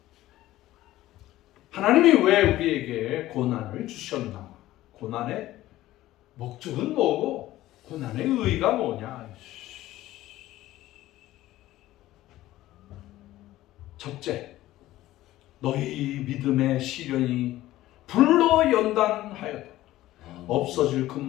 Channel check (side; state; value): right; quieter; 15.5 dB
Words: 하나님이 왜 우리에게 고난을 주셨나? 고난의 목적은 뭐고 고난의 의의가 뭐냐? 첫째, 너희 믿음의 시련이 불로 연단하여도 없어질